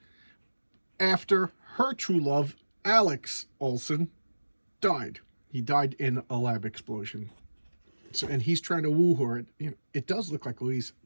after her true love, Alex Olson, died. He died in a lab explosion. So, and he's trying to woo her. It does look like Louise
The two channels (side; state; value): both; inverted; correlation -1.00